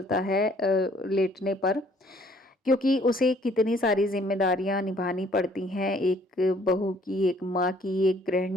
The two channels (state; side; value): normal; both; correlation 0.61